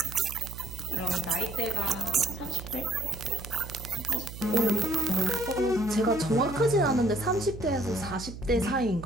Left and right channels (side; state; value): right; noise; hum, 11 dB below the sound